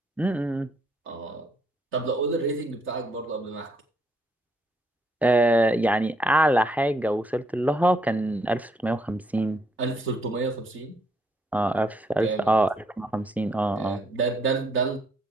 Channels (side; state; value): both; normal; correlation 0.72